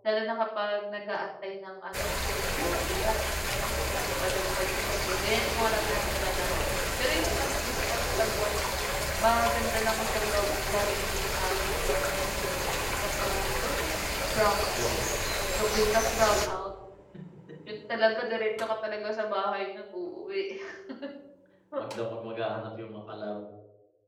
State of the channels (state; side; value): identical; both; correlation 1.00